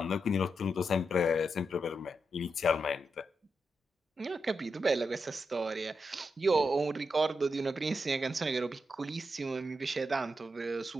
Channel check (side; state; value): both; normal; correlation 0.85